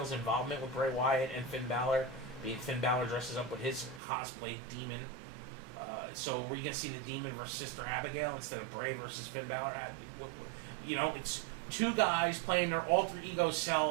involvement with Bray Wyatt and Finn Balor, being Finn Balor dresses up with his cosplay demon. So we're going to see the demon versus Sister Abigail instead of Bray versus Finn Balor. It's two guys playing their alter ego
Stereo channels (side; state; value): left; drops out; at 4.0 s